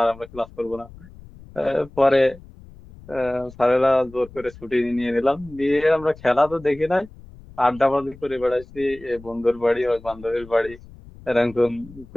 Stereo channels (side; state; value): left; noise; rumble, 20 dB below the sound